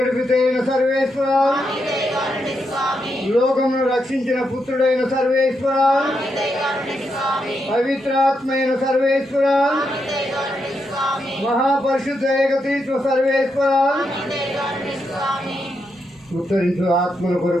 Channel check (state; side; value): normal; both; correlation 0.82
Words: సర్వేశ్వర, లోకమును రక్షించిన పుత్రుడైన సర్వేశ్వర, పవిత్రాత్మైన సర్వేశ్వర, మహాపరిశుద్ధ ఏకతీత్వ సర్వేశ్వర, ఉత్తరించు ఆత్మల